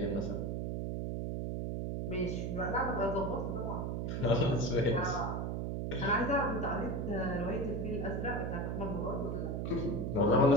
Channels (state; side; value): noise; right; hum, 1 dB below the sound